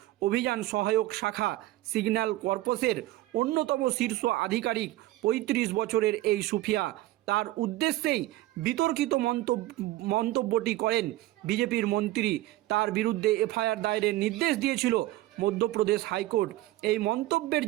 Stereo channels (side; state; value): left; quieter; 16.5 dB